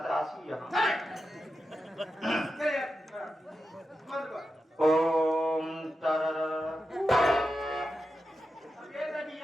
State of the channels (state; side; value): normal; both; correlation 0.89